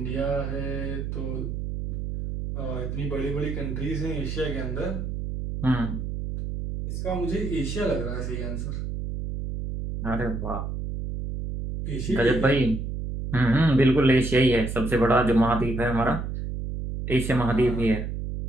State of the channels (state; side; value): noise; right; hum, 4 dB below the sound